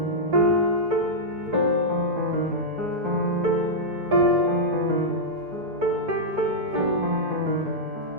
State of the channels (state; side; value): late; left; 4.7 ms